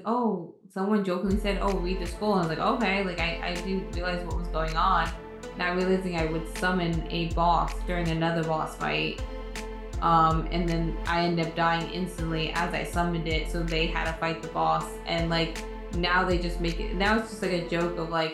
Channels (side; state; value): both; identical; correlation 1.00